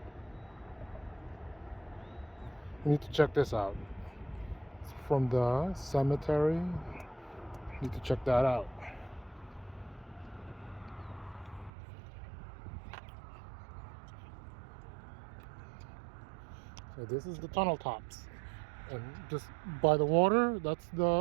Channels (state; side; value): drops out; left; at 11.7 s